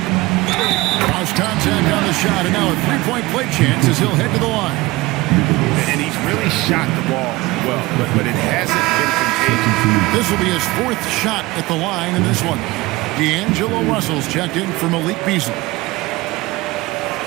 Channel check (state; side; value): quieter; left; 20.7 dB